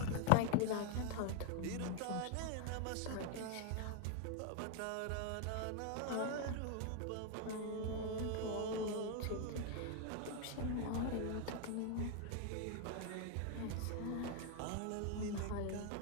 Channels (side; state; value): both; different; correlation 0.00